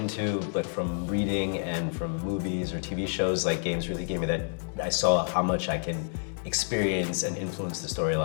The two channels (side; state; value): right; silent; digital silence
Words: but from reading and from movies or TV shows, like games really gave me that. I saw how much I can experience and influence the